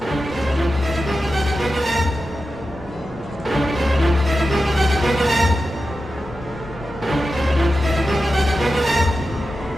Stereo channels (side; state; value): left; noise; rumble, 19 dB below the sound